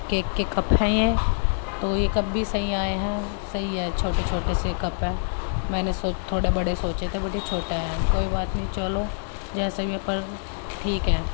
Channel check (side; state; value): right; silent; digital silence